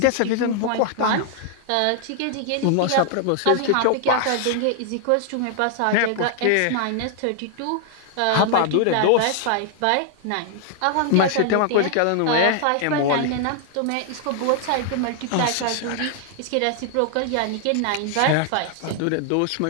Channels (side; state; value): both; different; correlation 0.00